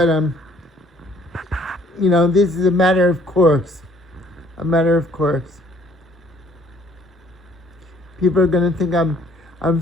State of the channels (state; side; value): normal; both; correlation 0.60